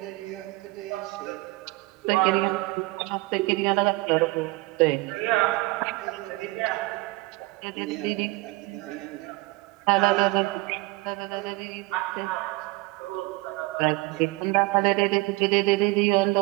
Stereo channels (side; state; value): left; quieter; 22.0 dB